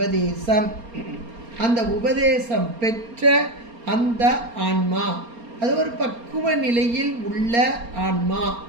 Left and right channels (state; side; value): late; left; 4.3 ms